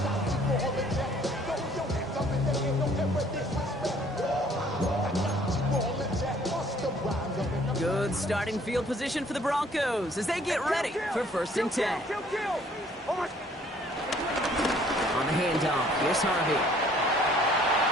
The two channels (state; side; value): normal; both; correlation 0.59